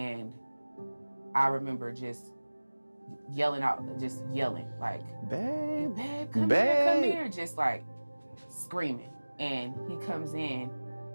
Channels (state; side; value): inverted; both; correlation -1.00